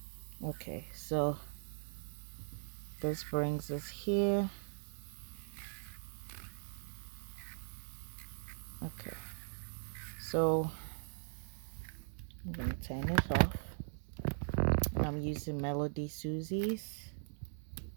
Okay, so this brings us here. Okay, so I'm gonna turn it off, and I'm using Melody Susie's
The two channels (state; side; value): silent; left; digital silence